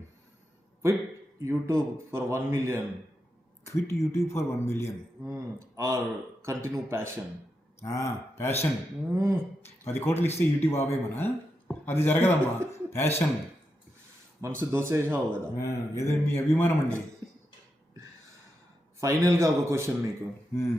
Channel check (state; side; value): normal; both; correlation 0.86